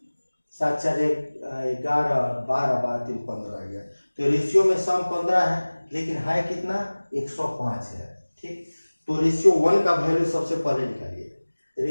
7 4 11 12 12 3 15 आ गया। तो रेशियो में सम 15 है लेकिन है कितना 105 है। ठीक, तो रेशियो 1 का वैल्यू सबसे पहले निकालिए।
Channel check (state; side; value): inverted; both; correlation -1.00